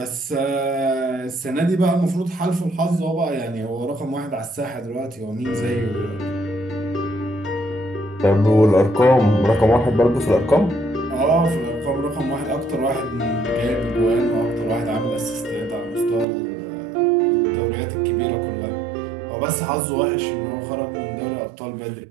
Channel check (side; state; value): left; drops out; at 16.2 s